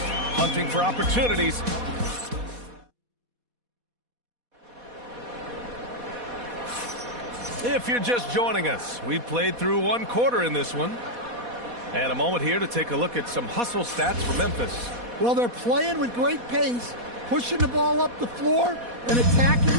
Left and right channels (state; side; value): late; left; 4.2 ms